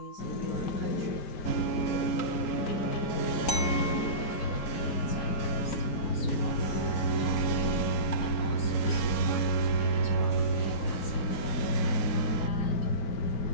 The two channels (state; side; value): late; right; 4.4 ms